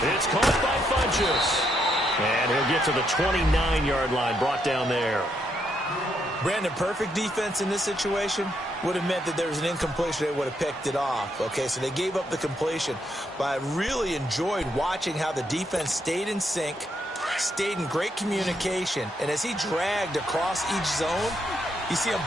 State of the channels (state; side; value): normal; both; correlation 0.77